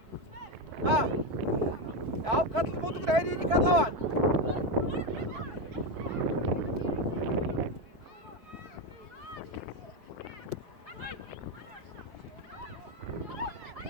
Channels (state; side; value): late; left; 4.6 ms